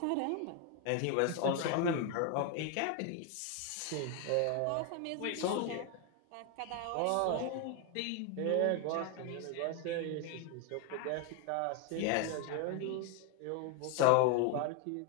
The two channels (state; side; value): different; both; correlation 0.01